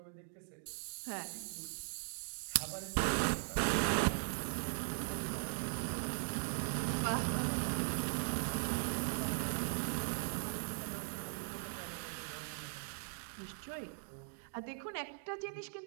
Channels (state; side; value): silent; left; digital silence